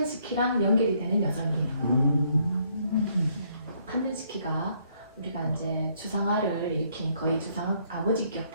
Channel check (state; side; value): inverted; both; correlation -0.68